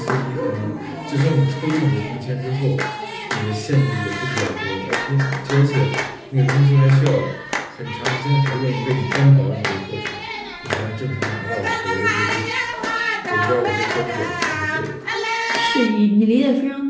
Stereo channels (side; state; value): both; identical; correlation 1.00